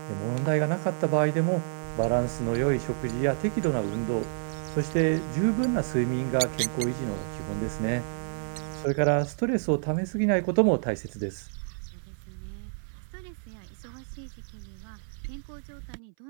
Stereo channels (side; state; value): left; silent; 59 dB below the other